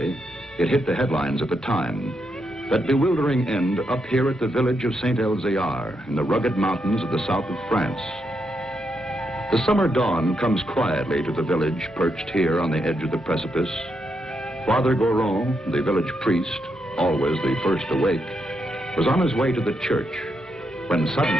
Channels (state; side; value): normal; both; correlation 0.81